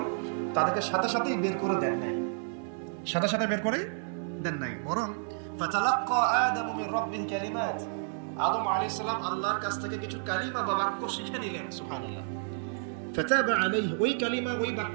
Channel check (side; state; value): left; silent; digital silence